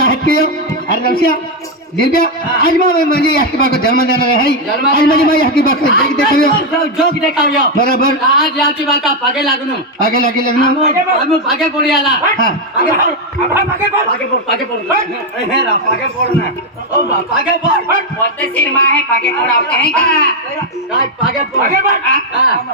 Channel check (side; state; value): both; normal; correlation 0.03